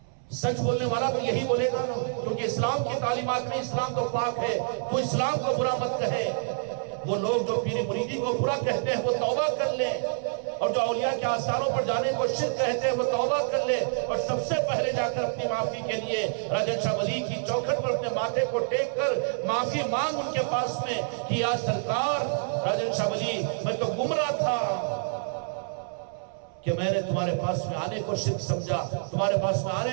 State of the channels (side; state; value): left; silent; 60 dB below the other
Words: سچ بولنے والا تو یہی بولے گا نا، کیونکہ اسلام کی تعلیمات میں اسلام تو پاک ہے، تو اسلام کو برا مت کہے. وہ لوگ جو پیری مریدی کو برا کہتے ہیں وہ توبہ کر لیں، اور جو اولیاء کے آثاروں پر جانے کو شرک کہتے ہیں وہ توبہ کر لے، اور سب سے پہلے جا کر اپنی معافی کے لیے راجن شاہ ولی کی چوکھٹ پر اپنے ماتھے کو ٹیک کر معافی مانگ ان کے پاس میں کہ یا سرکار راجن شاہ ولی میں تو گمراہ تھا کہ میں نے تمہارے پاس میں آنے کو شرک سمجھا، تمہارے پاس میں